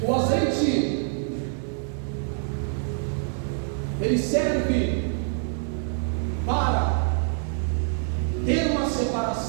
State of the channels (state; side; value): silent; left; digital silence